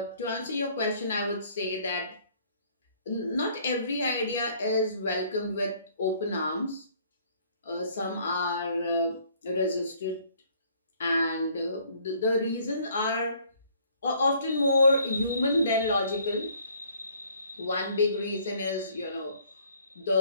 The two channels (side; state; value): both; inverted; correlation -0.60